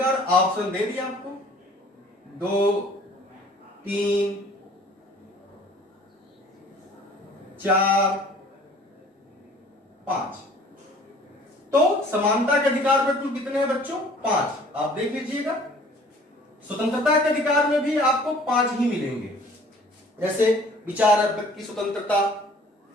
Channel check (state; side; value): normal; both; correlation 0.52